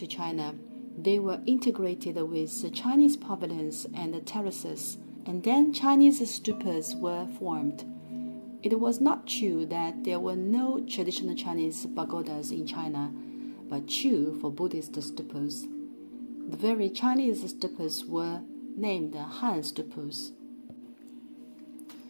China, they were integrated with Chinese pavilions and terraces, and then Chinese stupas were formed. It was not true that there were no traditional Chinese pagodas in China, but true for Buddhist stupas. The very Chinese stupas were named Han stupas.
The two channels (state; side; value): inverted; both; correlation -1.00